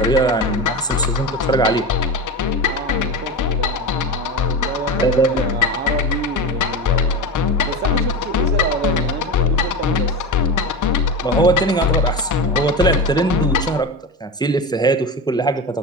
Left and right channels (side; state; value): both; normal; correlation 0.24